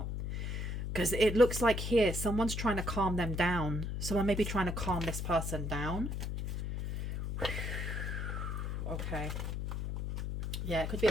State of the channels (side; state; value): left; noise; hum, 3 dB below the sound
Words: Because it looks like here, someone's trying to calm them down. Someone may be trying to calm this person down. Okay. Yeah, it could be